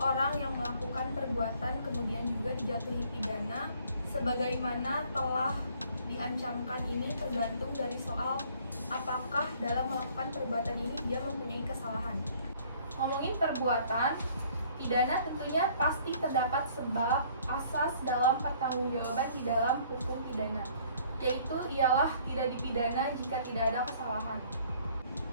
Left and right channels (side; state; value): both; inverted; correlation -0.59